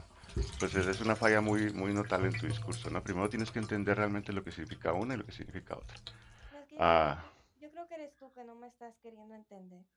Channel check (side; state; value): both; identical; correlation 1.00